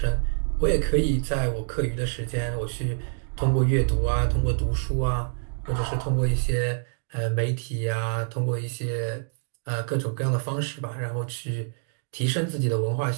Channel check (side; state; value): left; silent; digital silence